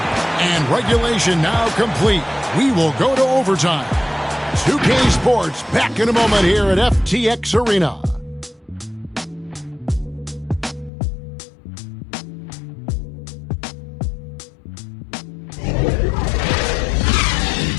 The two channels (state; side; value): drops out; right; at 10.9 s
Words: And regulation now complete. We will go to overtime. 2K Sports back in a moment here at FTX Arena.